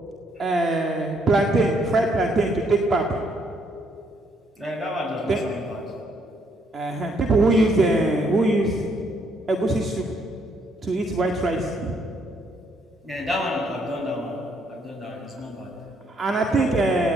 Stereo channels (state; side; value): normal; both; correlation 0.71